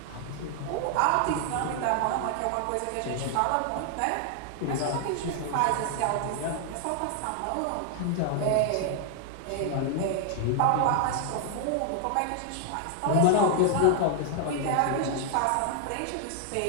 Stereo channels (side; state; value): both; different; correlation 0.00